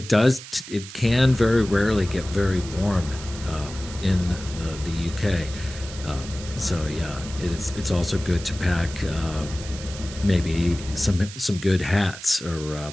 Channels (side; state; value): right; noise; hiss, 14 dB below the sound